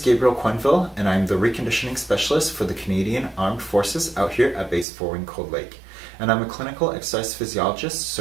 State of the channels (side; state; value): left; drops out; at 4.9 s